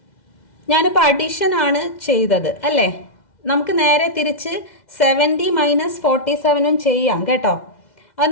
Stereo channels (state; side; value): late; right; 2.0 ms